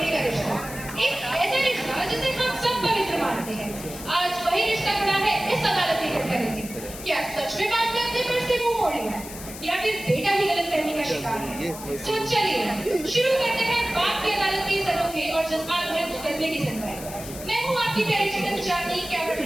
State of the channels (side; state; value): left; noise; hiss, 13 dB below the sound